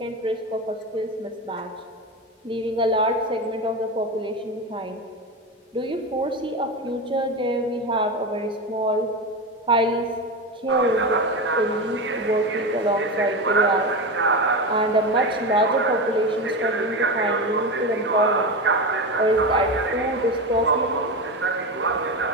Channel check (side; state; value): both; normal; correlation 0.19